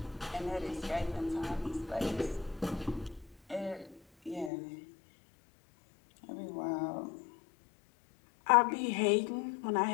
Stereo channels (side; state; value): right; drops out; at 4.5 s